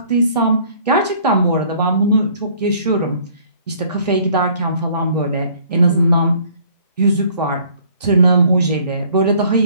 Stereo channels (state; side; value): inverted; both; correlation -0.57